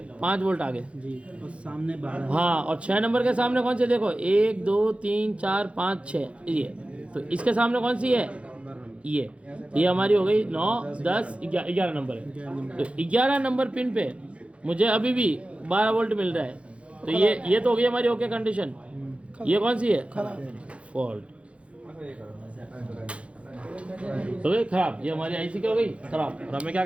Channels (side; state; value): left; late; 0.061 ms